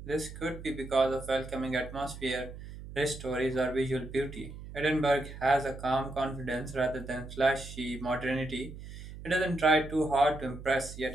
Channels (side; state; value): right; noise; hum, 12 dB below the sound